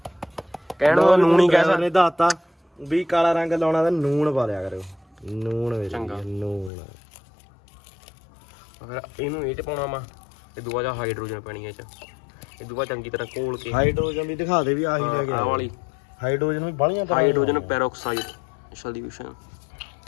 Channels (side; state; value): right; drops out; at 6.7 s